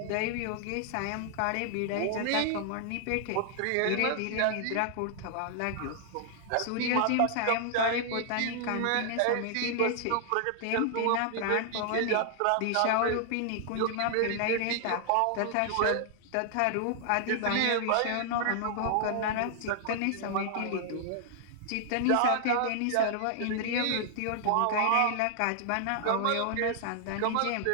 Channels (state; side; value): different; both; correlation -0.01